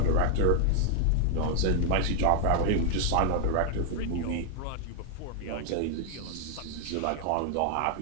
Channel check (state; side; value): different; both; correlation 0.00